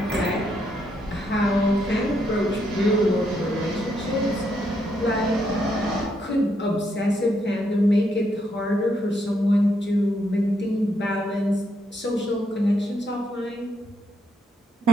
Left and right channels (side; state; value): both; normal; correlation 0.77